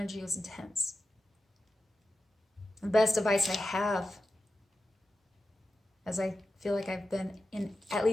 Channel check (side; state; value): both; normal; correlation 0.92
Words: was intense. The best advice I have, as I feel like I've been in at